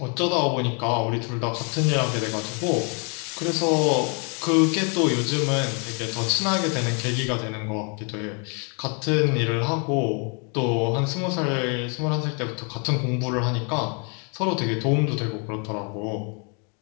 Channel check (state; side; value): quieter; right; 36.8 dB